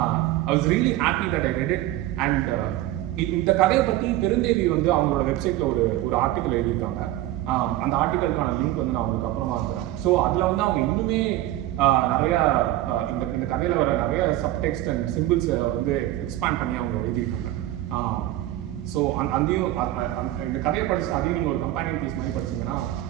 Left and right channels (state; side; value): quieter; left; 15.0 dB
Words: I was really happy that I read it. And இந்த கதையை பற்றி பெருந்தேவி வந்து அவங்களோட வெப்சைட்டில் ஒரு ஆர்டிக்கல் எழுதியிருக்காங்க. அந்த ஆர்டிக்கலுக்கான லிங்க் வந்து நான் உங்களுக்கு அப்புறமா இருக்கிறேன். ஸோ அதில் வந்து அவங்க இன்னுமே நிறையா இந்த கதையில் வர நிறைய சப்டெக்ஸ்ட் அண்ட் சிம்பிள்ஸை வந்து எக்ஸ்பேண்ட் பண்ணி அவங்க எழுதியிருக்காங்க. ஸோ அதையும் இந்த கதையை படிச்சு அதையும் நீங்கள் ஒரு கம்பேனியன் பீஸ் மாதிரி படிச்சீங்கன்னா